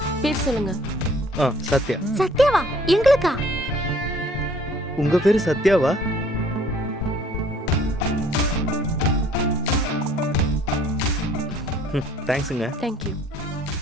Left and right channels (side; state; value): both; normal; correlation 0.57